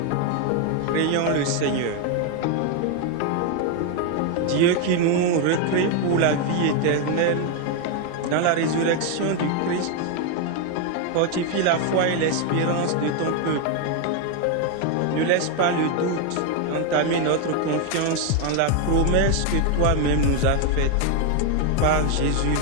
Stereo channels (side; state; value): both; different; correlation 0.01